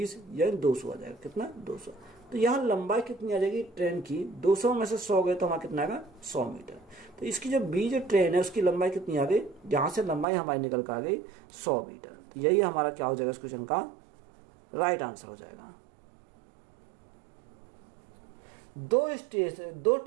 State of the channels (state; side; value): drops out; left; at 10.2 s